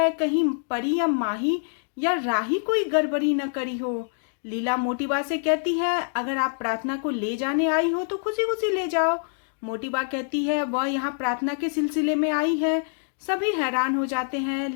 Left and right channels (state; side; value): silent; right; digital silence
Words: कहीं परी या माही या राही कोई गड़बड़ी न करी हो। लीला मोटीबा से कहती है अगर आप प्रार्थना को ले जाने आई हो तो खुशी खुशी ले जाओ। मोटीबा कहती है वह यहाँ प्रार्थना के सिलसिले में आई है। सभी हैरान हो जाते हैं।